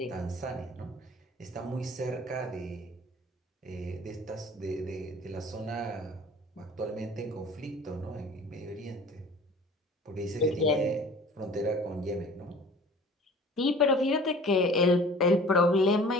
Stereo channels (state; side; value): normal; both; correlation 0.47